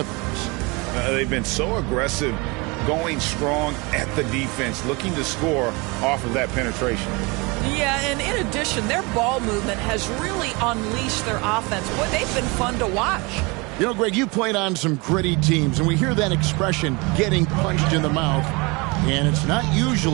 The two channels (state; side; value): quieter; left; 27.0 dB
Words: They've been so aggressive, going strong at the defense, looking to score off of that penetration. Yeah, and in addition, their ball movement has really unleashed their offense. Boy, they've been fun to watch. You know, Greg, you played on some gritty teams, and we hear that expression, getting punched in the mouth, and it's not